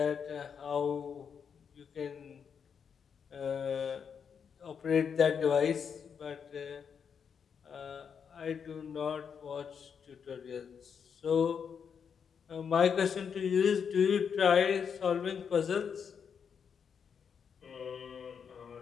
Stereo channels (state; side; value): quieter; right; 6.9 dB